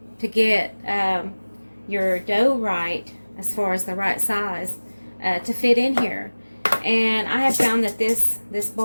to get your dough right, as far as the right size to fit in here. And I have found that this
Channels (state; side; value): inverted; both; correlation -1.00